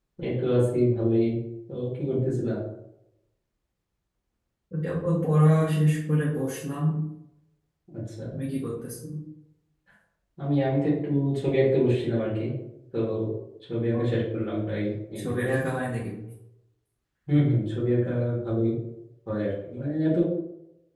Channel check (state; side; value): identical; both; correlation 1.00